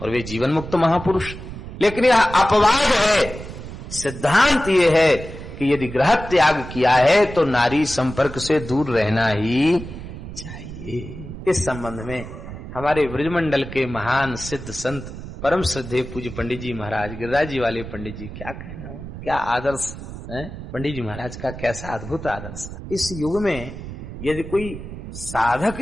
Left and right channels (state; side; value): noise; right; rumble, 11 dB below the sound